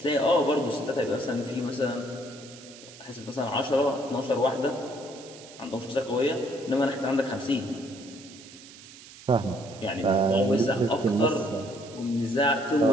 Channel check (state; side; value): noise; right; hiss, 18 dB below the sound